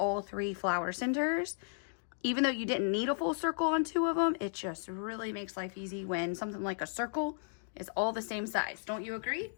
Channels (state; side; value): silent; right; digital silence